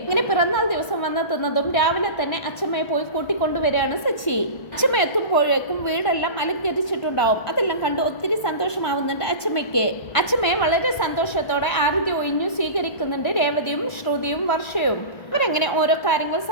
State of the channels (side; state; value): right; late; 1.5 ms